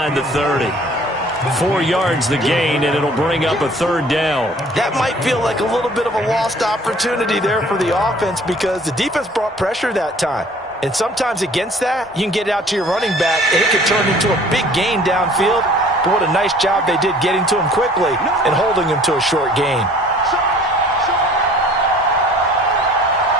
the 30. 4 yards the gain, and it'll bring up a 3rd down. That might feel like a little bit of a lost opportunity there for the offense because the defense brought pressure that time. And sometimes against that, you can get it out to your running back, and it could turn into a big gain downfield. But what a nice job they did getting to him quickly and holding him to a short gain.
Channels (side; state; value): both; normal; correlation 0.52